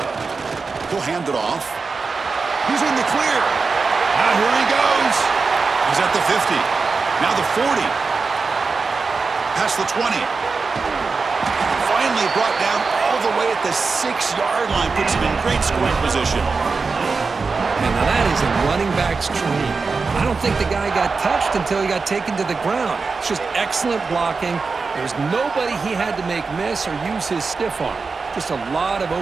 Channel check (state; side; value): quieter; left; 4.5 dB